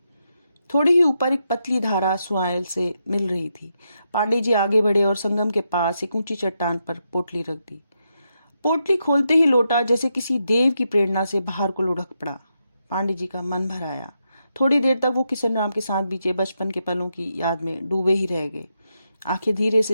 थोड़ी ही ऊपर एक पतली धारा सुआल से मिल रही थी। पांडे जी आगे बढ़े और संगम के पास एक ऊंची चट्टान पर पोटली रख दी। पोटली खोलते ही लोटा जैसे किसी देव की प्रेरणा से बाहर को लुढ़क पड़ा। पांडे जी का मन भर आया। थोड़ी देर तक वो किशन राम के साथ बीते बचपन के पलों की याद में डूबे ही रह गए। आंखें धीरे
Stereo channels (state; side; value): inverted; both; correlation -0.83